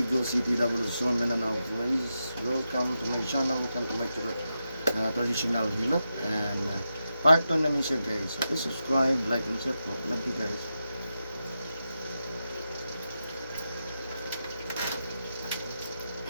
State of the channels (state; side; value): inverted; both; correlation -0.88